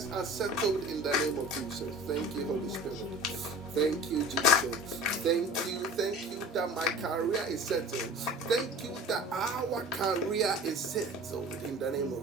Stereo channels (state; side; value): normal; both; correlation 0.42